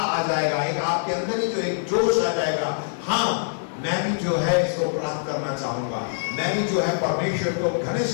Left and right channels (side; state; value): right; silent; digital silence